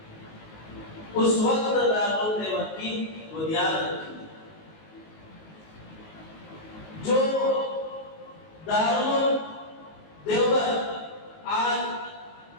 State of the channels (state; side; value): late; right; 19 ms